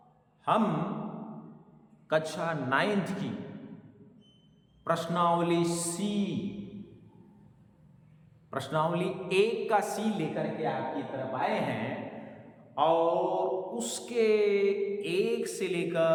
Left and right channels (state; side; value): identical; both; correlation 1.00